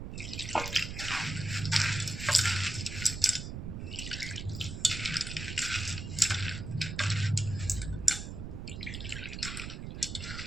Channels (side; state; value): right; noise; rumble, 7 dB below the sound